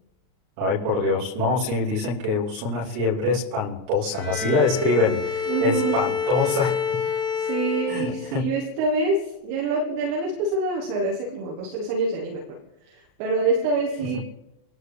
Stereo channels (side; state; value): left; late; 38 ms